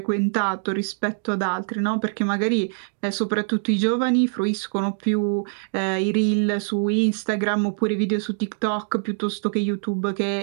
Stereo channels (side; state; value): left; silent; digital silence